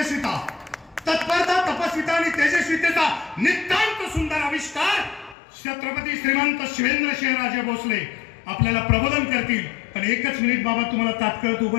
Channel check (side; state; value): right; drops out; at 5.4 s